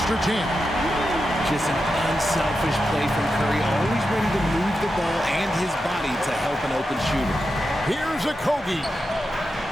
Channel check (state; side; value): normal; both; correlation 0.89